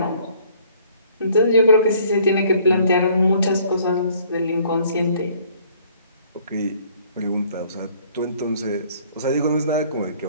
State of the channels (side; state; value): both; inverted; correlation -0.58